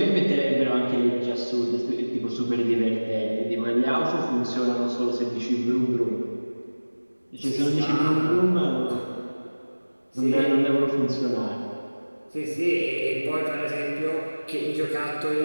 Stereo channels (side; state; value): both; inverted; correlation -1.00